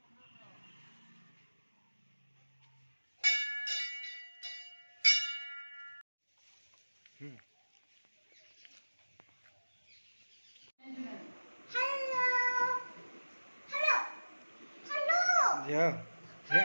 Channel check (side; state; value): both; inverted; correlation -1.00